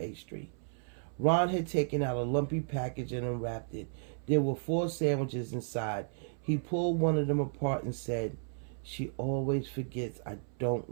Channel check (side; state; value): left; silent; 55 dB below the other